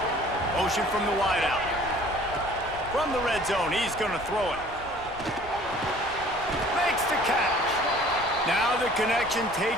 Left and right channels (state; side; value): noise; left; rumble, 18 dB below the sound